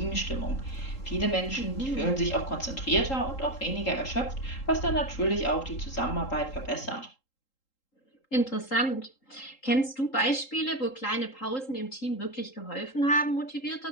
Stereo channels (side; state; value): right; late; 3.8 ms